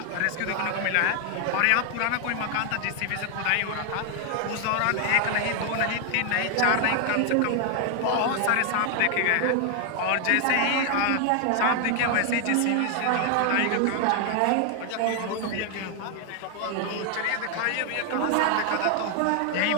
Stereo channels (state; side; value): different; both; correlation 0.01